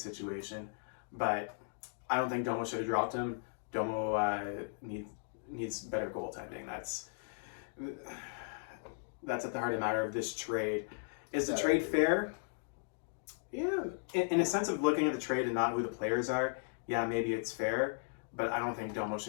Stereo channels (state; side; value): silent; right; digital silence